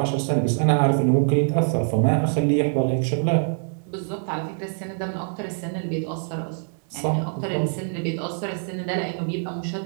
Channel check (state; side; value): silent; left; digital silence